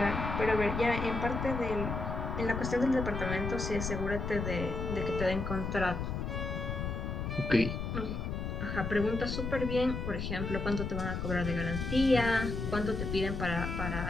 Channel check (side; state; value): left; noise; rumble, 3 dB below the sound